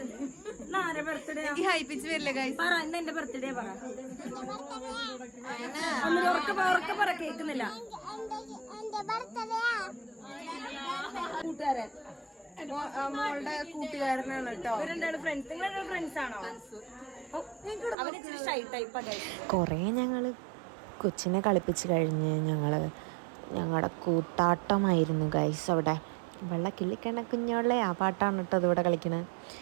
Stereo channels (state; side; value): drops out; left; at 17.9 s